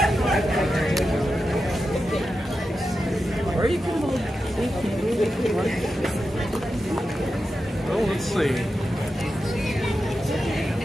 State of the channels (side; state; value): both; normal; correlation 0.90